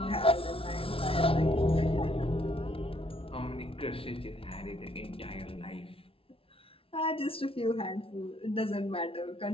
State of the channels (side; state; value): right; late; 0.26 ms